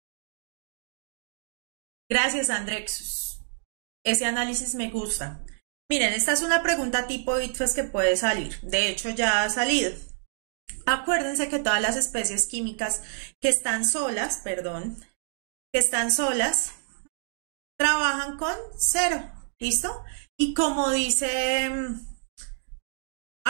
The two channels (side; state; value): left; silent; digital silence